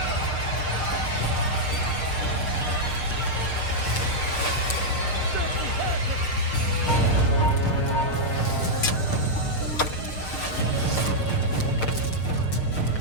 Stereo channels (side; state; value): right; late; 6.6 ms